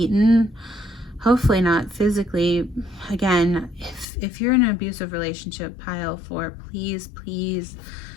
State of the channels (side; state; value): right; drops out; at 4.0 s